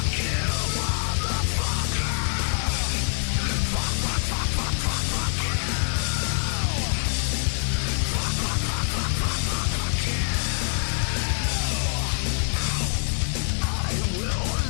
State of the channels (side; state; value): right; silent; digital silence